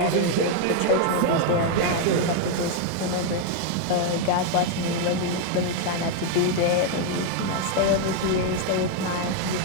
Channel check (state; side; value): different; both; correlation 0.01